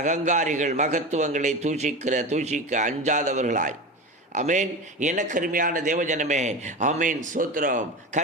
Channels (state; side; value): normal; both; correlation 0.26